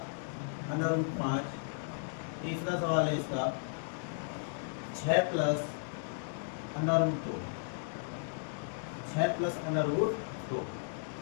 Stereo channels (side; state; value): right; silent; digital silence